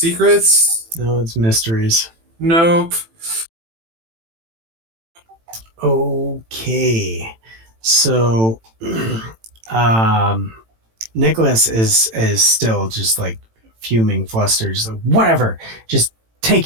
No, it's mysteries. Nope. Okay. So Nicholas is still just like fuming, flustered, just like, whatever, just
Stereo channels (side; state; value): left; late; 18 ms